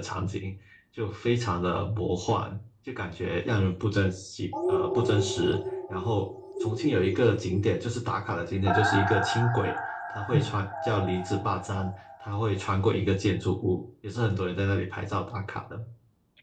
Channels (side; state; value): both; identical; correlation 1.00